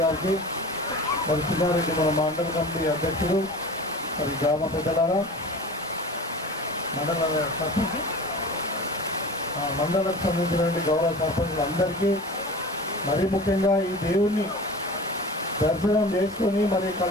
గారికి, చిన్నారెడ్డి మన మండల కమిటీ అధ్యక్షుడు, గ్రామ పెద్దలారా, మండలకు సంబంధించినటువంటి గౌరవ సర్పంచులు అందరికీ, మరీ ముఖ్యంగా ఈ దేవుణ్ణి దర్శనం చేసుకొని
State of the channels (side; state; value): both; normal; correlation 0.37